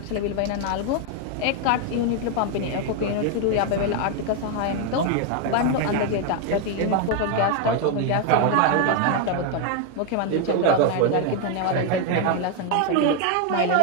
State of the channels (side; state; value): both; different; correlation 0.01